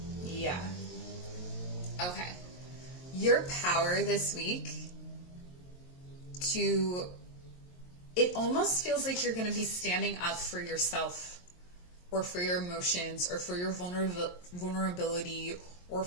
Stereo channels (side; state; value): right; late; 22 ms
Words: Yeah. Okay. Your power this week it almost feels like you're going to be standing up for yourself or for your emotions or for your vulnerability or